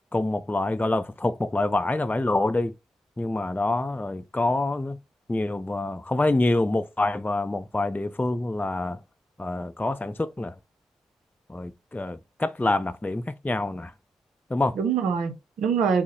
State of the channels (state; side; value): normal; both; correlation 0.87